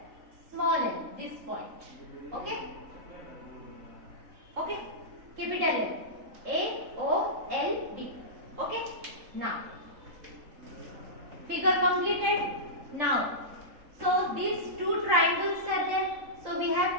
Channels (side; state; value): left; late; 3.9 ms